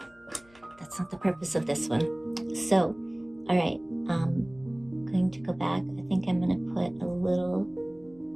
that's not the purpose of this one. So, all right, I'm going to go back. I think I'm going to put a little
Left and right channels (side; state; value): left; noise; hum, 28 dB below the sound